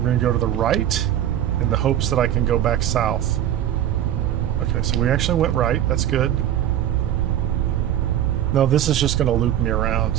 going to go to the right in the hopes that I can go back south. Okay, so we actually went right. That's good. No, this is just going to loop me around.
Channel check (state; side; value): quieter; left; 11.3 dB